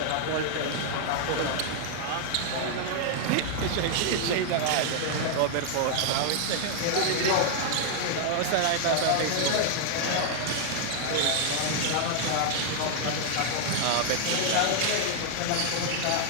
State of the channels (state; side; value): different; both; correlation 0.00